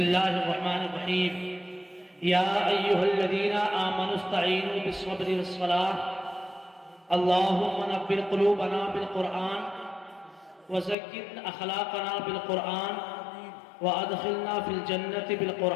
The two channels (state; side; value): drops out; right; at 11.0 s